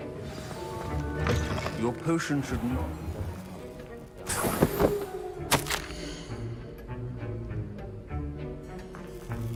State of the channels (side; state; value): both; identical; correlation 1.00